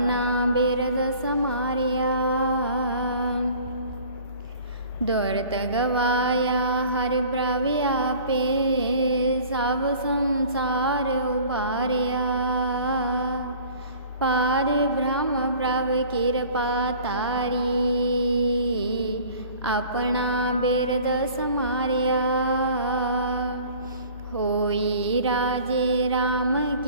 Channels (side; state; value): both; inverted; correlation -0.48